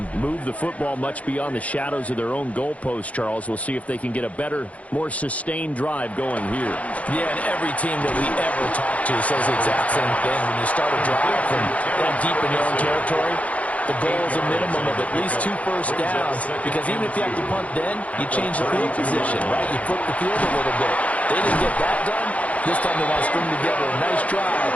move the football much beyond the shadows of their own goalpost, Charles. We'll see if they can get a better, more sustained drive going here. Yeah, and every team that we ever talk to says the exact same thing. When you start a drive from that deep in your own territory, the goal is a minimum of at least 2 first downs, because even if you have to punt then, you change the field position, right? You flip the field a little bit. They didn't get that done. This time they want to string together a nice drive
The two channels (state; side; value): late; right; 0.067 ms